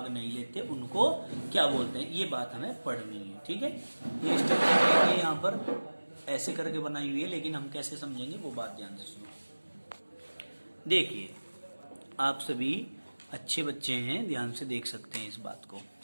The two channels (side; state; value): both; inverted; correlation -1.00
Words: नहीं लेते उनको क्या बोलते हैं। ये बात हमें पढ़नी है। ठीक है, ये स्ट्रक्चर यहाँ पर ऐसे करके बनाई हुई है, लेकिन हम कैसे समझेंगे वो बात ध्यान से सुनो। देखिए, आप सभी अच्छे बच्चे हैं, ध्यान से देख सकते हैं इस बात को।